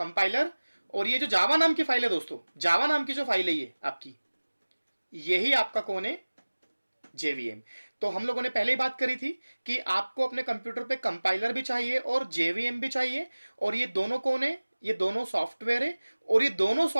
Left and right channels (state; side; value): inverted; both; correlation -1.00